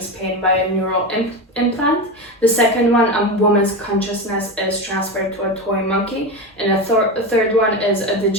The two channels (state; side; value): normal; both; correlation 0.20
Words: pain by a neural implant. The second one, a woman's consciousness is transferred to a toy monkey. And a third one is a